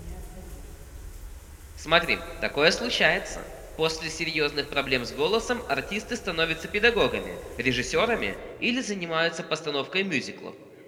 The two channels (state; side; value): identical; both; correlation 1.00